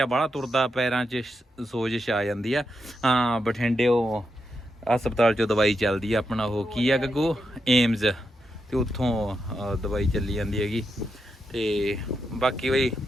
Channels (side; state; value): both; normal; correlation 0.84